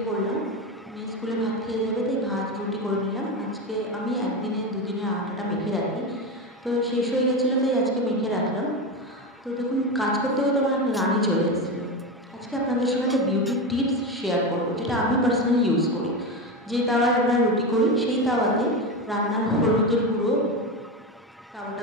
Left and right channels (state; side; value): normal; both; correlation 0.18